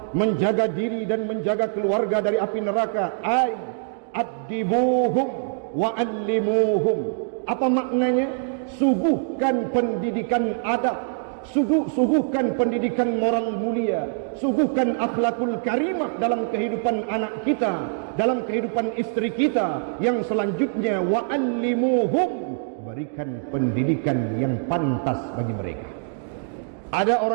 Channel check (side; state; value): left; silent; 63 dB below the other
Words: menjaga diri dan menjaga keluarga dari api neraka. Ay addibuhum wa allimuhum. Apa maknanya? Suguhkan pendidikan adab, suguhkan pendidikan moral mulia, suguhkan akhlakul karimah dalam kehidupan anak kita, dalam kehidupan istri kita. Yang selanjutnya wa'allimuhum, berikan pendidikan yang pantas bagi mereka. Ada